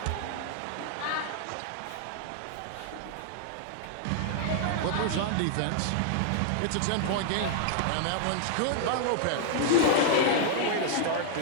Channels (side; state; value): both; different; correlation 0.00